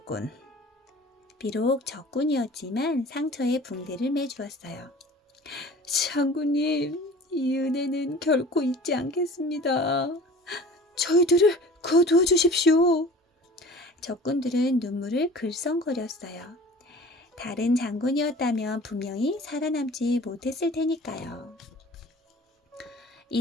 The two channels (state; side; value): normal; both; correlation 0.43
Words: 비록 적군이었지만 상처에 붕대를 매주었어요. 장군님, 이 은혜는 결코 잊지 않겠습니다. 저희들을 거두어 주십시오. 적군들은 눈물을 글썽거렸어요. 다른 장군이었다면 분명히 살아남지 못했을 테니까요.